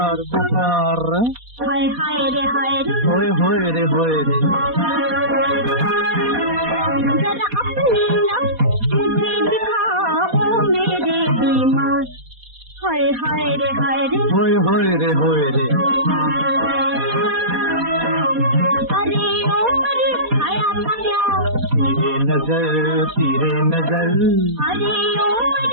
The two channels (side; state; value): left; late; 4.2 ms